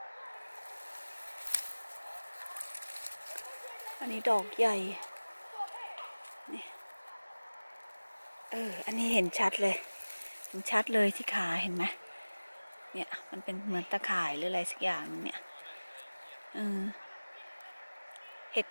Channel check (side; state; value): both; inverted; correlation -1.00